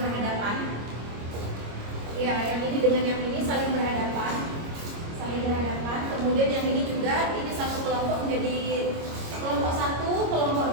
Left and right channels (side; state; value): left; late; 25 ms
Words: Ya, yang ini dengan yang ini saling berhadapan. kemudian yang ini juga, ini satu kelompok menjadi kelompok 1, kelompok